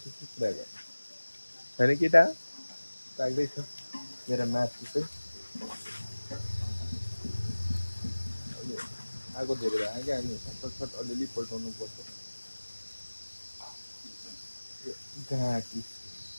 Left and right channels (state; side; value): inverted; both; correlation -1.00